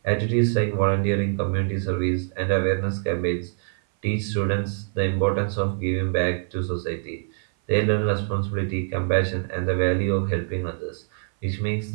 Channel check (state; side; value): silent; left; 58 dB below the other